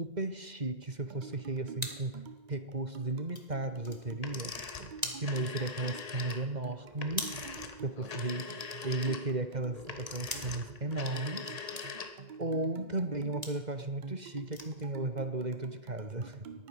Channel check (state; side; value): late; left; 1.9 ms